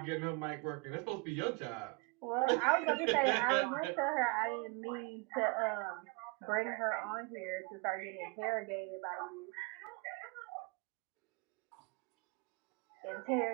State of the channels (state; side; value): quieter; left; 29.6 dB